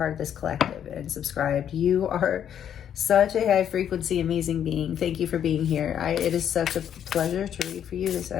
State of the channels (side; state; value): right; quieter; 9.4 dB